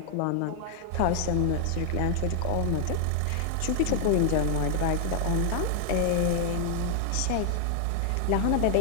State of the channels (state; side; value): different; both; correlation 0.00